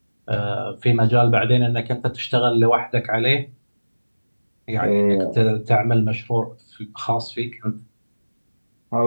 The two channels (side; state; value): both; inverted; correlation -1.00